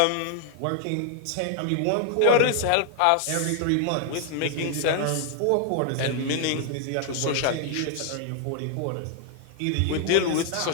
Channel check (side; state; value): both; different; correlation 0.00